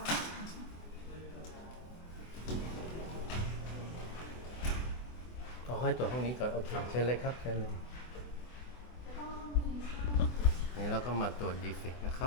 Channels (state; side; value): late; right; 24 ms